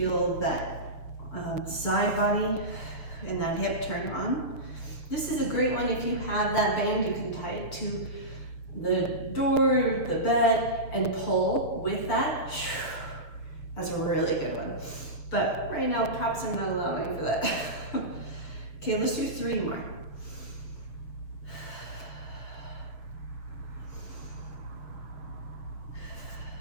that side body and that hip turn on. This is a great one. If you have that band, you can tie it to the door, the bed, and pull with that. That's a really good one. But right now, props are not allowing for that. Okay, let's do 3 more.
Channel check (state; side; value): late; right; 6.7 ms